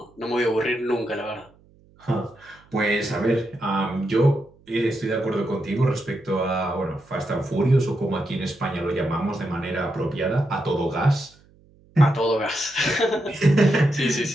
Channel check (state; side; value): noise; right; hum, 29 dB below the sound